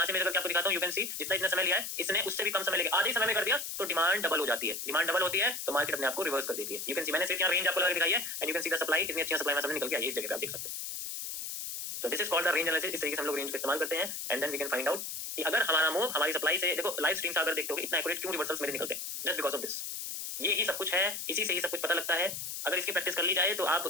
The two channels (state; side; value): noise; left; hiss, 6 dB below the sound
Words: से मेजर करके आपको दिखाता हूँ। यू कैन सी जितना इसने समय लिया है इसने उससे भी कम समय लेगा, आधे समय में कर दिया, तो डिमांड डबल हो जाती है। डिमांड डबल होती है तो मार्केट अपने आप को रिवर्स कर देती है। यू कैन सी मैंने सिर्फ यहाँ रेंज आपको लगा के दिखाई है, and you can see the supply, कितनी अच्छी सप्लाई में सामने निकल के आई है, इस जगह पे आप देख सकते हैं। तो this is called the range analysis. इस तरीके से हम लोग रेंज का इस्तेमाल करते हैं, and then we can find out कि अगर हमारा मूव हमारी सप्लाई से, देखो लाइव स्ट्रीम से अगर देखते हो इतना एक्यूरेट क्यों रिवर्सल्स मेरे निकलते हैं, जस्ट बिकॉज ऑफ दिस। ये ही सब कुछ है, इसी से ही सब कुछ पता लगता है। अगर इसकी प्रैक्टिस कर ली जाए तो आप